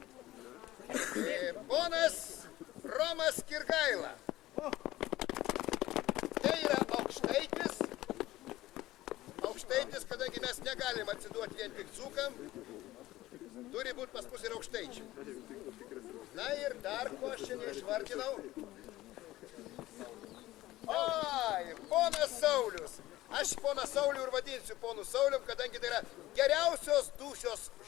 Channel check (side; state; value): right; quieter; 16.6 dB